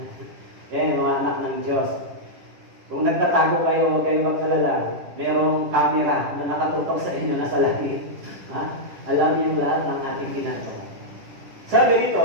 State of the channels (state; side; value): late; left; 10 ms